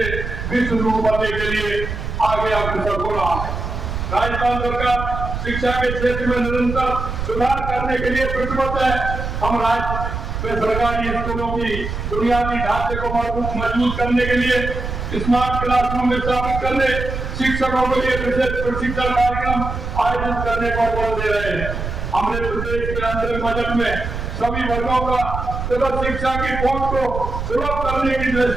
विश्व गुरु बनने के लिए आगे अग्रसर हो रहा है। राजस्थान सरकार शिक्षा के क्षेत्र में निरंतर सुधार करने के लिए प्रतिबद्ध है। हम राज्य में सरकारी स्कूलों की बुनियादी ढांचे को मजबूत करने के लिए स्मार्ट क्लासरूम स्थापित करने, शिक्षकों के लिए विशेष प्रशिक्षण कार्यक्रम आयोजित करने पर बल दे रहे हैं। हमने प्रदेश के अंतरिम बजट में सभी वर्गों का शिक्षा की पहुंच को सुलभ करने की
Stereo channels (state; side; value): noise; right; rumble, 5 dB below the sound